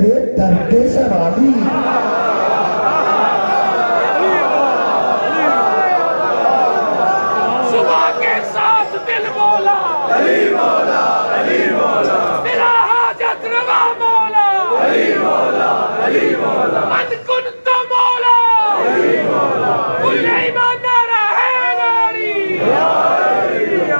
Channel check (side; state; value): both; inverted; correlation -1.00